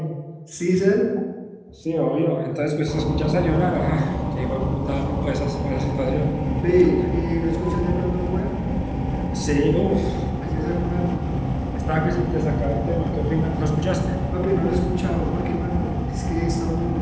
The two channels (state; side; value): identical; both; correlation 1.00